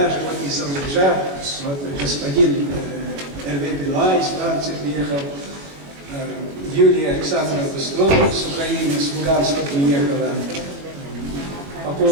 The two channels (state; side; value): late; left; 21 ms